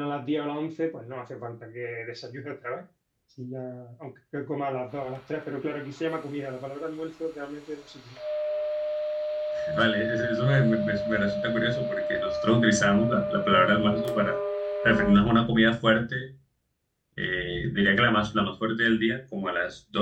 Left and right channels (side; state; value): both; identical; correlation 1.00